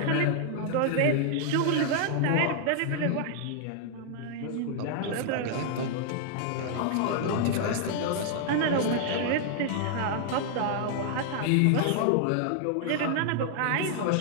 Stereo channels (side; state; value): both; different; correlation -0.01